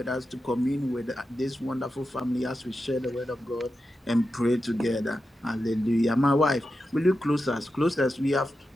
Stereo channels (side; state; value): both; normal; correlation 0.90